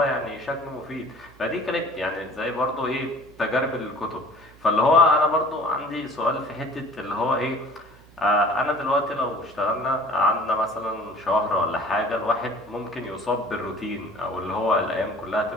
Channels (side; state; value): right; noise; hum, 24 dB below the sound